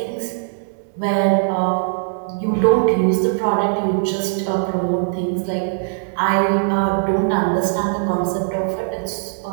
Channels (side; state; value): left; silent; digital silence